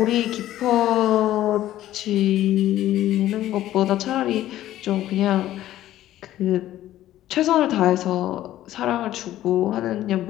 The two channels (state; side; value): quieter; right; 13.6 dB